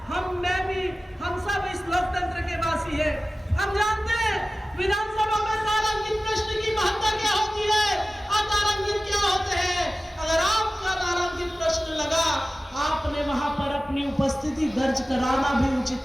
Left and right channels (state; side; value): normal; both; correlation 0.96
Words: हम सब इस लोकतंत्र के वासी है, हम जानते हैं विधानसभा में तारांकित प्रश्न की महत्ता क्या होती है, अतारांकित क्या होते हैं। अगर आपका तारांकित प्रश्न लगा, आपने वहां पर अपनी उपस्थिति दर्ज कराना भी